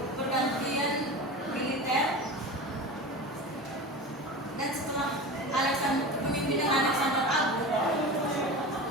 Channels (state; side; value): normal; both; correlation 0.30